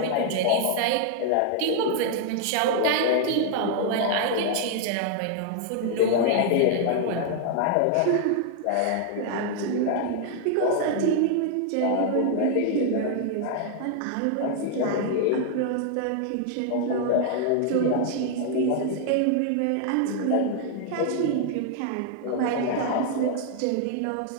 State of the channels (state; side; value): different; both; correlation 0.00